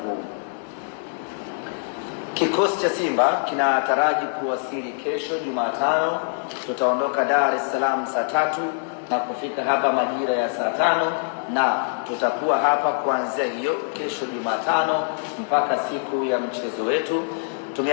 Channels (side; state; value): right; silent; 63 dB below the other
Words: Kikosi cha Simba kinataraji kuwasili kesho Jumatano. Tutaondoka Dar es Salaam saa 3 na kufika hapa majira ya saa 5, na tutakuwa hapa kuanzia hiyo kesho Jumatano mpaka siku ya mchezo wetu.